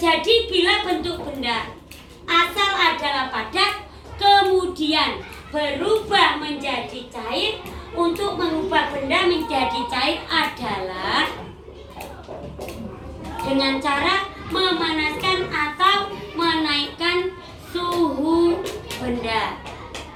bila bentuk benda asal adalah padat kemudian berubah menjadi cair. Untuk mengubah benda menjadi cair adalah dengan cara memanaskan atau menaikkan suhu benda.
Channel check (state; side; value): identical; both; correlation 1.00